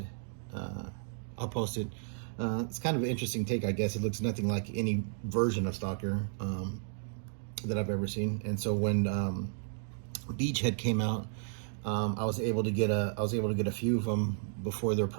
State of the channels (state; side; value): silent; left; digital silence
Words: I'll post it. It's kind of an interesting take, I guess. It looks nothing like any version of Stalker that I've ever seen. And so when Beachhead came out, I was able to get a few of them before their